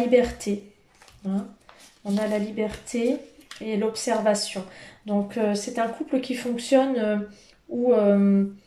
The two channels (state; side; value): identical; both; correlation 1.00